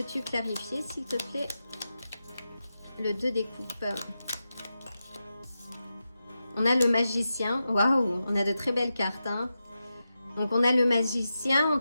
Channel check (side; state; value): both; inverted; correlation -0.91